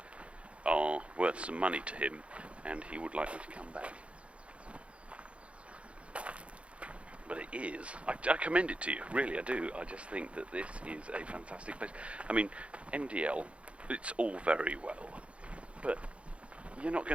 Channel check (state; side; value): late; left; 0.061 ms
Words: are worth some money to him and he would like me to come back. But it is. I commend it to you, really I do. I just think that this is a fantastic place. I mean, MDL, it's all very well, but you're not